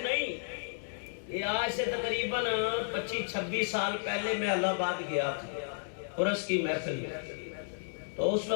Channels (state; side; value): silent; right; digital silence